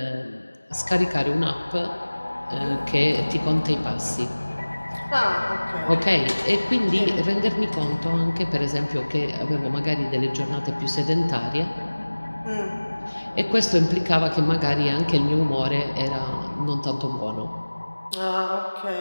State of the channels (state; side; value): inverted; both; correlation -1.00